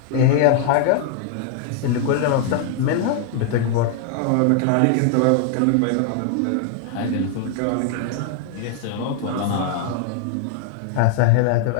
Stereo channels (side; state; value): both; different; correlation 0.00